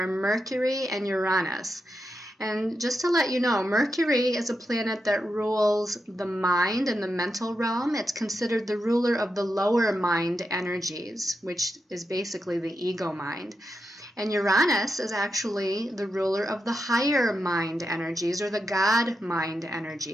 Mercury and Uranus. And just to let you know, Mercury is a planet that rules the mind and the mental realm. It's considered the ruler of the lower mind energies, which is basically the ego mind. And Uranus is actually the ruler of the higher mind energies, or the God mind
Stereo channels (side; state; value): both; normal; correlation 0.87